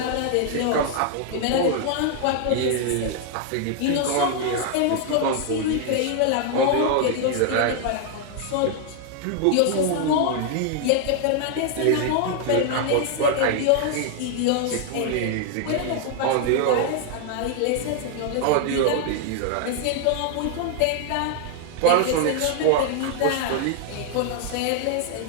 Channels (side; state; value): both; different; correlation 0.00